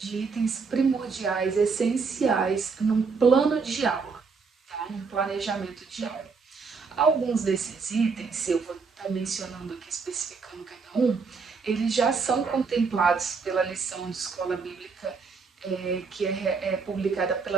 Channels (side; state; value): left; quieter; 4.9 dB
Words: itens primordiais, essenciais num plano de aula, tá? Num planejamento de aula. Alguns desses itens, eu vou estar mencionando aqui, especificando cada um, eles já são contemplados pela lição de escola bíblica que é publicada